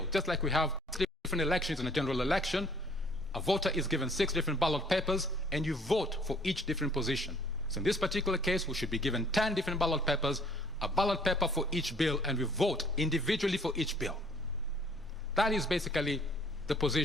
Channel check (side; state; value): both; normal; correlation 0.59